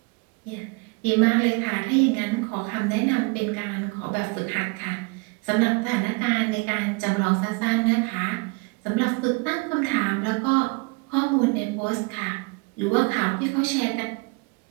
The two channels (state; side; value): quieter; left; 29.8 dB